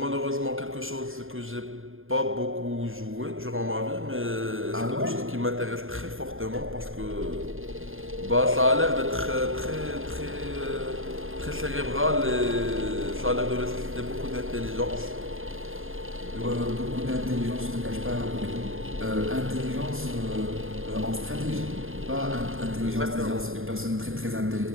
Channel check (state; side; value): late; left; 0.60 ms